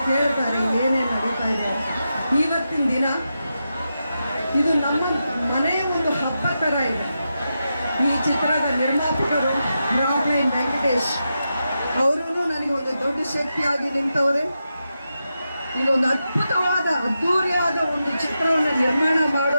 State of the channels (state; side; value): inverted; both; correlation -0.88